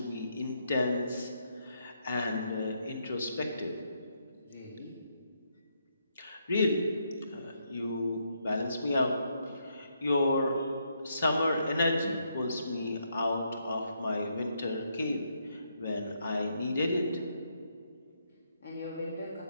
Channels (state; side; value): inverted; both; correlation -0.77